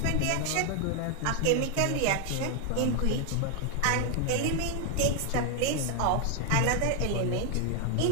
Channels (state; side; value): different; both; correlation 0.00